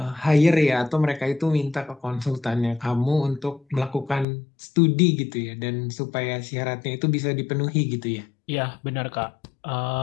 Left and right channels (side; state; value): right; drops out; at 4.2 s